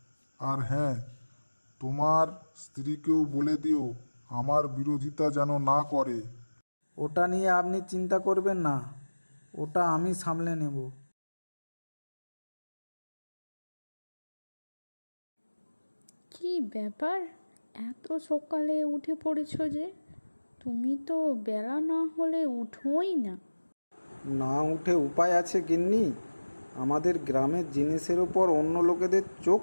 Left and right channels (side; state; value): both; inverted; correlation -1.00